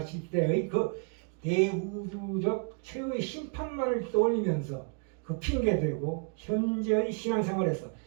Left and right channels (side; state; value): left; quieter; 37.0 dB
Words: 때의 그 대우주적 최후의 심판만을 떠올리면서 그 핑계대고 현재의 신앙생활에서